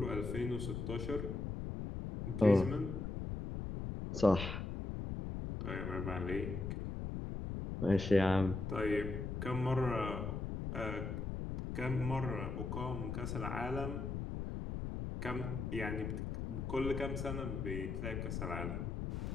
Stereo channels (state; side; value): noise; left; rumble, 4 dB below the sound